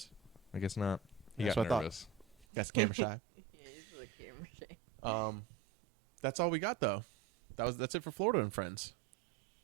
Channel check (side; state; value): left; drops out; at 2.5 s